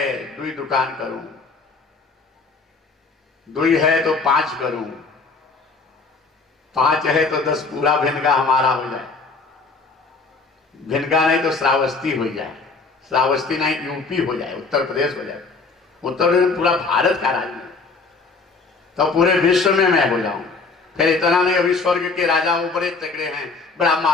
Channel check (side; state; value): right; quieter; 4.2 dB